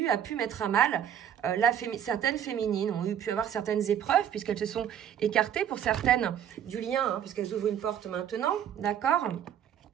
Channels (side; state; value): left; quieter; 9.5 dB